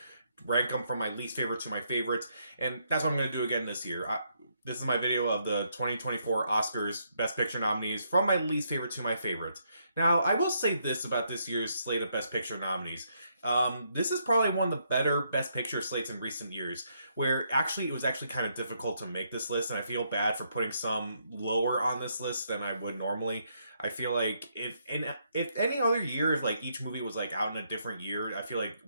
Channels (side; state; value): both; inverted; correlation -0.75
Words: rank them from my least favorite to my favorites, and that's what I'm going to do again this year. This is my video of the 2024 Oscars Best Picture nominees from my least favorite to my favorite. Now, I will say this about this year's slate of Best Picture nominees. This is probably one of the better Best Picture slates in recent years, where actually it was actually kind of difficult to make this list, and I feel bad for putting some lower on this list than I would normally. I feel like if any other year, if like each movie was like out in a different year, I feel like